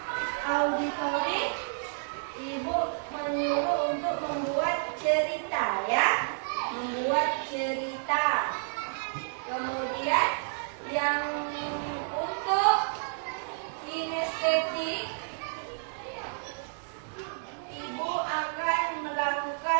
Keti, Ibu akan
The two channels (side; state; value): left; silent; digital silence